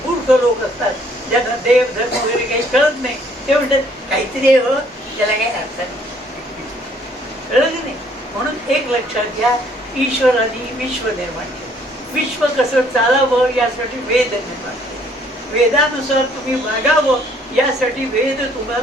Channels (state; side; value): normal; both; correlation 0.63